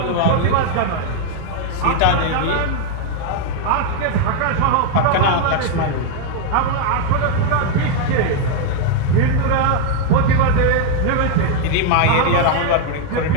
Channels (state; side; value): different; both; correlation 0.00